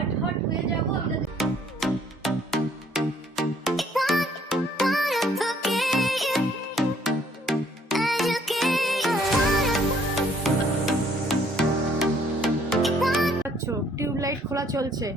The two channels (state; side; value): normal; both; correlation 0.63